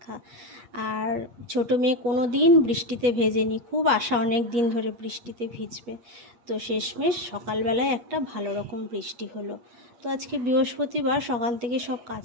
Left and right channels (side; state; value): left; late; 8.5 ms